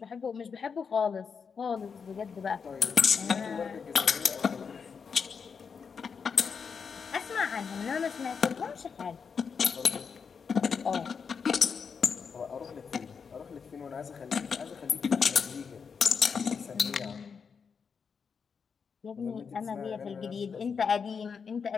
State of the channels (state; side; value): quieter; right; 6.0 dB